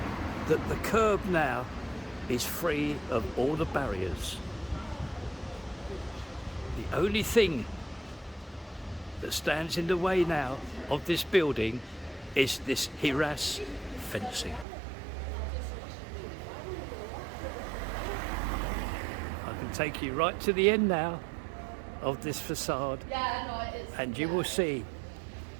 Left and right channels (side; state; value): left; drops out; at 14.7 s